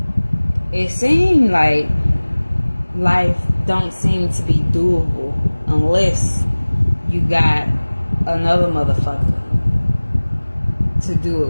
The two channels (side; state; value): both; inverted; correlation -1.00